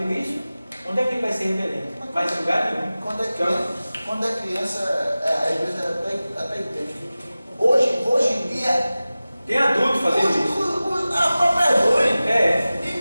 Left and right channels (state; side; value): inverted; both; correlation -0.97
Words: isso, onde é que ele vai ser rebelde? Vai ser lugar nenhum. Quando é criança, a igreja até entende. Hoje em dia, tem adulto fazendo isso. A própria é ruim. É.